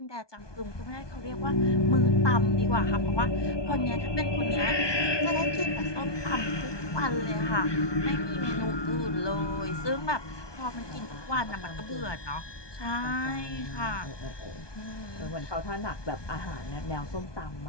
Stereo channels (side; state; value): right; late; 1.2 ms